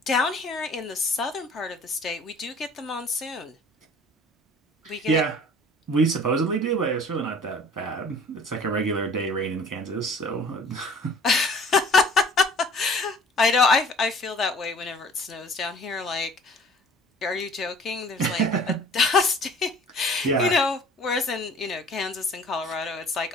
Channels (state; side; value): normal; both; correlation 0.50